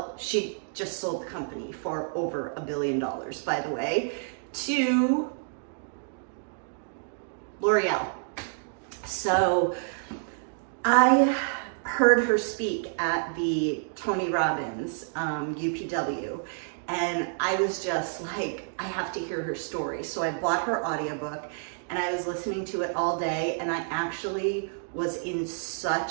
she just sold the company for over $1 billion, by the way, to L'Oreal. So I heard her speak at the Tony Robbins UPW, and I was just like, I have to hear her story. So I bought her audiobook and I was listening to it all day, and I actually was in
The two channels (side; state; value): left; silent; digital silence